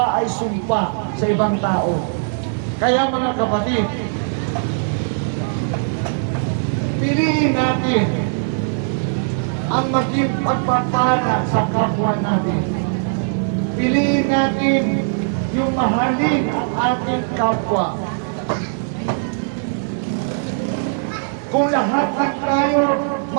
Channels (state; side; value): silent; left; 61 dB below the other